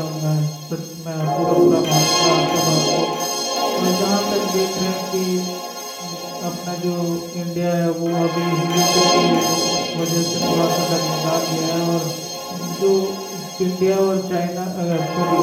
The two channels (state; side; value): identical; both; correlation 1.00